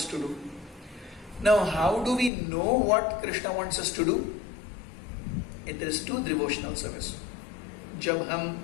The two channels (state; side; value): drops out; right; at 2.3 s